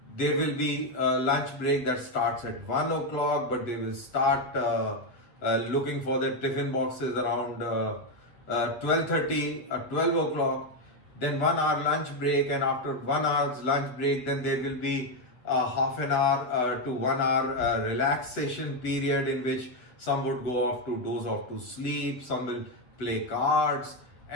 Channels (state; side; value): late; right; 8.0 ms